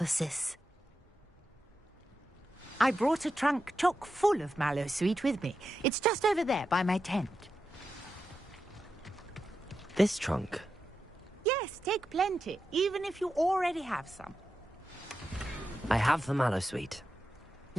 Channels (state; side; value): normal; both; correlation 0.89